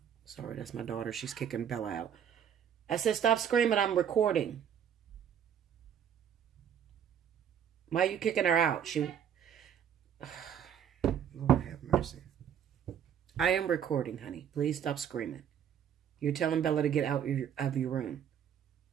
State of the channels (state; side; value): quieter; left; 8.8 dB